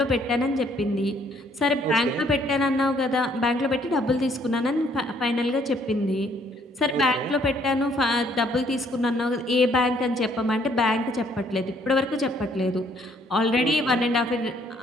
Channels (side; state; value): both; normal; correlation 0.65